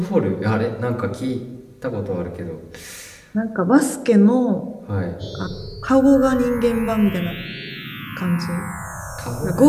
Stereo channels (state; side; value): identical; both; correlation 1.00